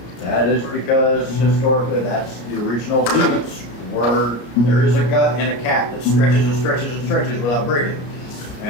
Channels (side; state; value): right; late; 34 ms